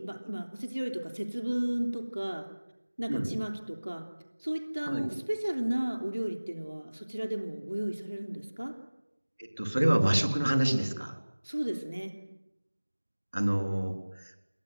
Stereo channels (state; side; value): inverted; both; correlation -1.00